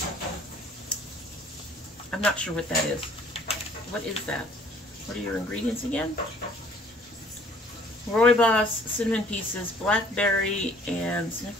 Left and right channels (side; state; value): both; normal; correlation 0.56